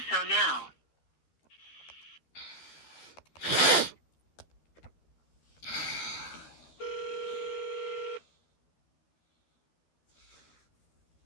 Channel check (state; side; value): late; right; 13 ms